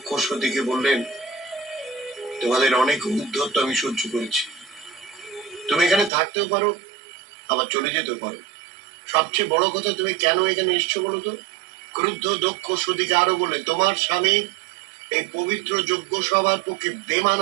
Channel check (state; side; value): drops out; left; at 6.1 s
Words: সতীকে বললেন, তোমাদের অনেক উদ্ধত্ত আমি সহ্য করেছি। তুমি এখানে থাকতেও পারো, আবার চলে যেতেও পারো। সবচেয়ে বড় কথা, তুমি কেন এখানে এসছো বলো তো? ক্রুদ্ধ দক্ষ সতীকে আরো বলে, তোমার স্বামী এই পবিত্র যজ্ঞ সভার পক্ষে